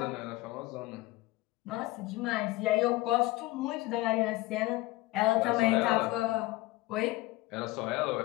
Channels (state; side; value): quieter; right; 19.3 dB